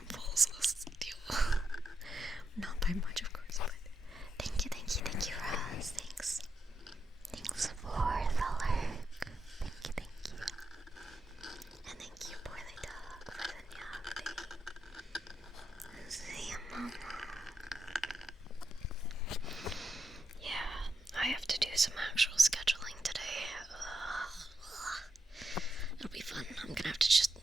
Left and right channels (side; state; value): both; normal; correlation 0.84